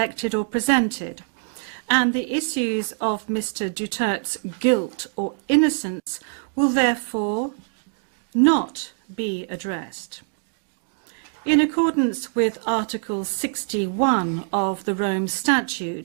or presented, and the issues of Mr. Duterte's guilt or innocence will therefore not be addressed. In accordance with Article 61 of the Rome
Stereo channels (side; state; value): left; silent; digital silence